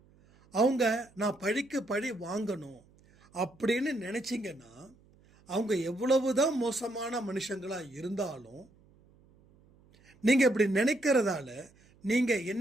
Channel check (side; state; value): right; noise; hum, 29 dB below the sound